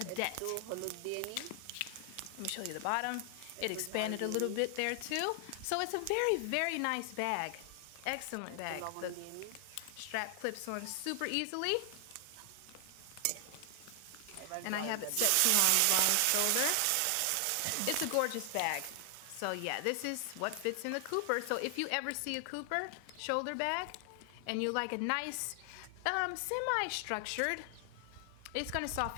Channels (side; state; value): both; different; correlation 0.00